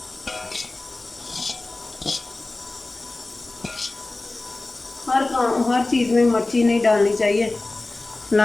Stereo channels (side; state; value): right; quieter; 3.0 dB